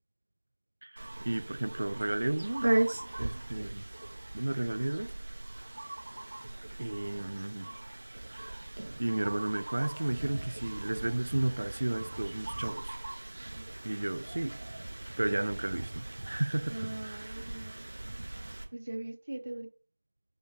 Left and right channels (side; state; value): both; inverted; correlation -1.00